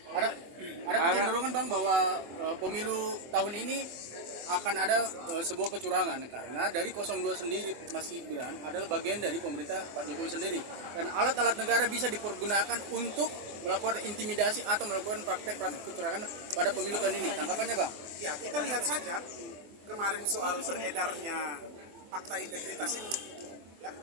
Ada kecenderungan, Bang, bahwa pemilu tahun ini akan ada sebuah kecurangan karena dari 02 sendiri Mas Gibran adalah bagian dari pemerintah Pak Jokowi sendiri dan alat-alat negara bisa dipergunakan untuk melakukan intimidasi atau melakukan praktek-praktek kecurangan pada pemilu tahun ini. Tanggapannya, Bang? Ya, kita lihat saja kemarin soal beredarnya fakta integritas ini, ya,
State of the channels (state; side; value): late; left; 24 ms